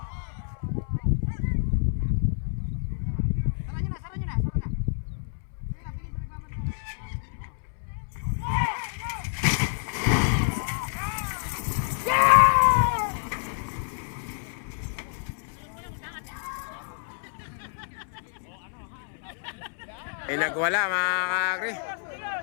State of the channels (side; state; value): right; silent; 59 dB below the other